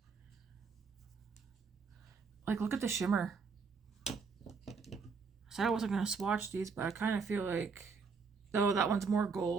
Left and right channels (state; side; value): quieter; left; 5.2 dB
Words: Like, look at the shimmer. I said I wasn't going to swatch these, but I kind of feel like, though that one's more